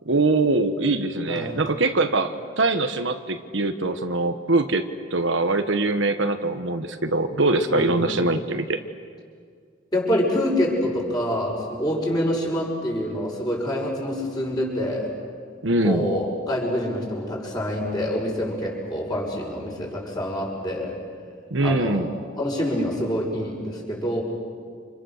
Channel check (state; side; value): normal; both; correlation 0.29